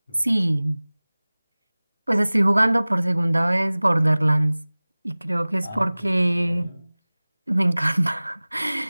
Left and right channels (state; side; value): inverted; both; correlation -1.00